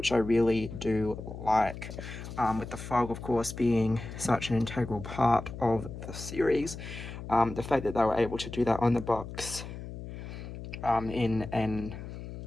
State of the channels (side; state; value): left; noise; hum, 10 dB below the sound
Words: I really do like. With the fog, of course, being such an integral part of the series, the fact that they were able to do that on the box in an